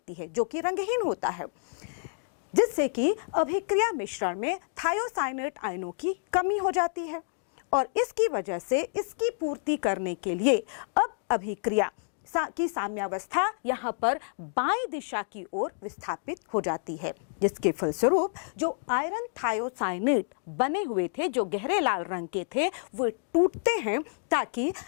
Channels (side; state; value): right; silent; digital silence